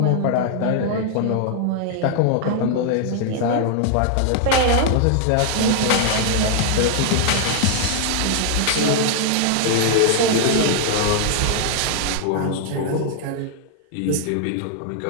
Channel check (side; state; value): both; different; correlation 0.00